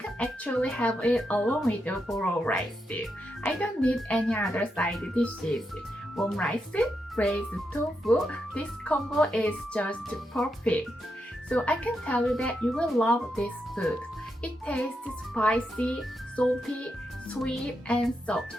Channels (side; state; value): both; normal; correlation 0.84